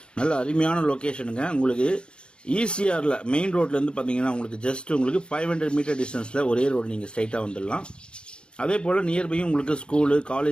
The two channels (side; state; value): right; late; 0.053 ms